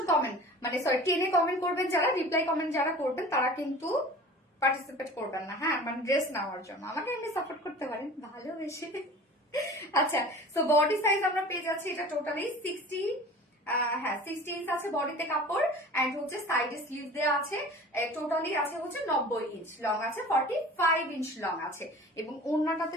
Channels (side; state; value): both; normal; correlation 0.41